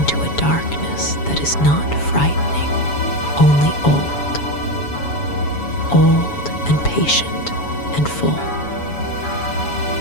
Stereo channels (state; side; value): late; right; 7.1 ms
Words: a darkness that is not frightening, only old and patient and full.